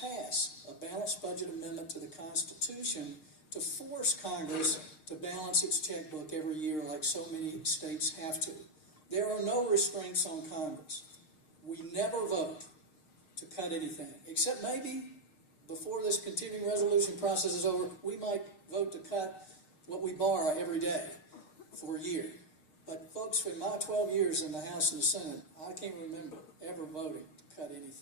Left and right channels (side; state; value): right; late; 6.5 ms